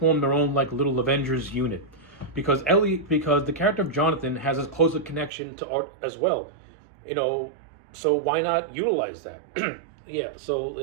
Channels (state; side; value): drops out; left; at 5.3 s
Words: their own like little Avengers unit, because the character of Jonathan has a closer connection to Art as well, so why not utilize that? Yeah.